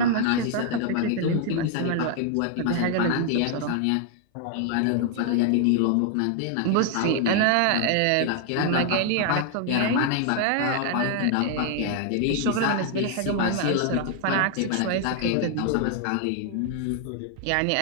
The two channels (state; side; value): different; both; correlation 0.00